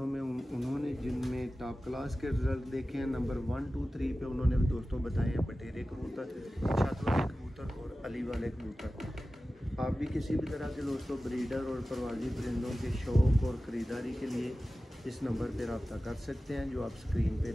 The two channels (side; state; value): both; normal; correlation 0.95